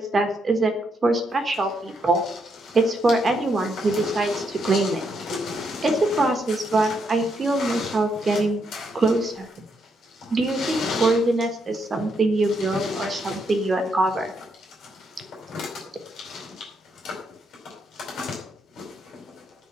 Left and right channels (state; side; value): normal; both; correlation 0.77